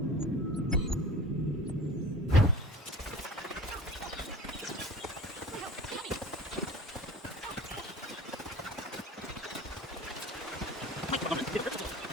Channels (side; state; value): both; normal; correlation 0.40